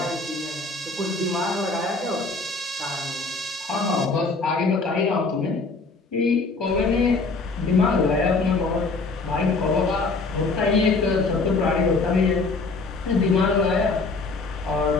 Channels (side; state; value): right; quieter; 3.8 dB